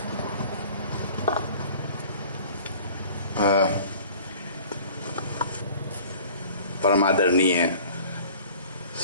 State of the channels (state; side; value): inverted; both; correlation -0.47